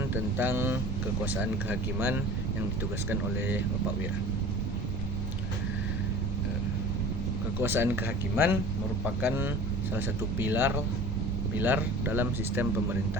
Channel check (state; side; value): normal; both; correlation 0.41